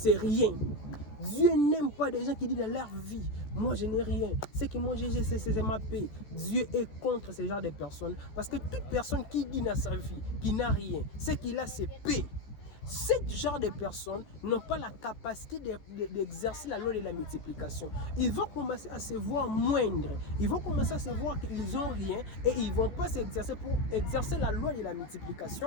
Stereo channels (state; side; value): late; right; 14 ms